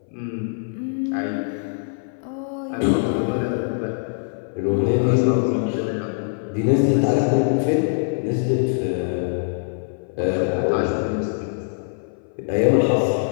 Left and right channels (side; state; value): right; silent; 59 dB below the other